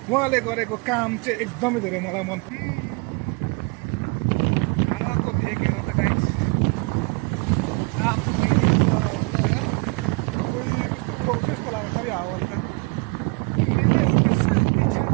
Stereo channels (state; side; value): quieter; left; 28.6 dB